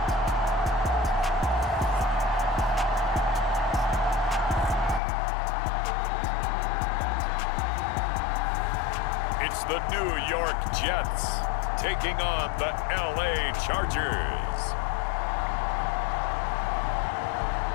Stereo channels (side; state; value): right; drops out; at 5.0 s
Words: It's the New York Jets taking on the LA Chargers.